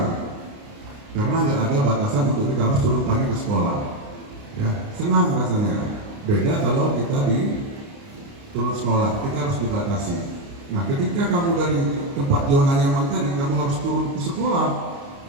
karena nggak ada batasan untuk kita harus turun pagi ke sekolah, ya. Senang rasanya. Beda kalau kita di turun sekolah, kita harus dibatasi. Nah, ketika kamu dari tempat zona nyaman tadi, kamu harus turun ke sekolah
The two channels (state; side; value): late; left; 29 ms